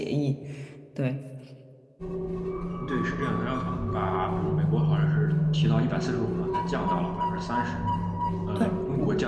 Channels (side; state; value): both; identical; correlation 1.00